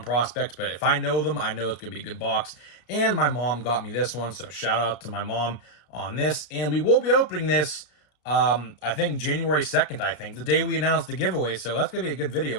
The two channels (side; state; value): right; late; 34 ms